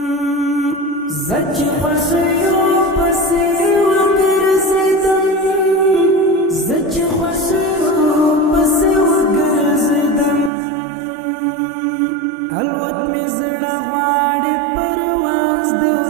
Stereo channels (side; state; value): left; drops out; at 10.5 s